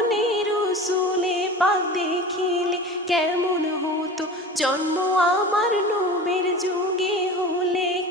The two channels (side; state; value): both; normal; correlation 0.35